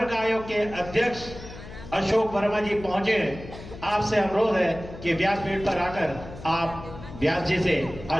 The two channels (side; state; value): left; noise; hum, 14 dB below the sound